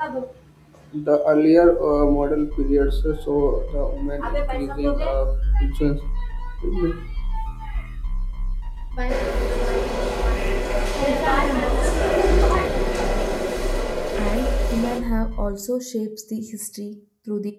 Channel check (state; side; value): identical; both; correlation 1.00